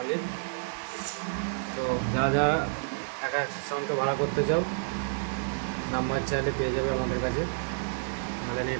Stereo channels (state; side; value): silent; left; digital silence